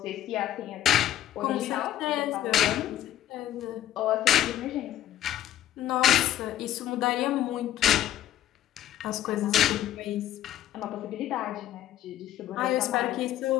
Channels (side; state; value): right; quieter; 12.3 dB